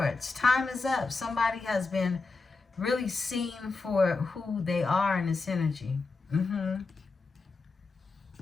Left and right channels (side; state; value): right; quieter; 4.0 dB